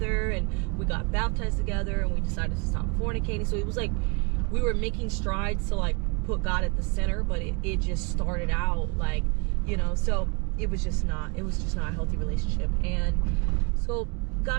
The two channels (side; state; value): left; quieter; 32.0 dB